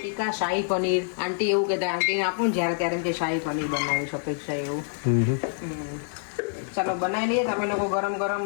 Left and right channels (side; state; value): right; silent; digital silence